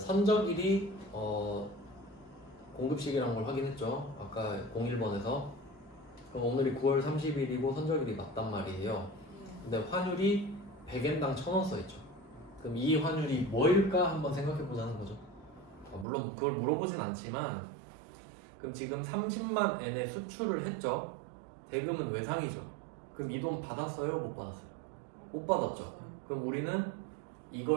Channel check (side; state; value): left; drops out; at 16.1 s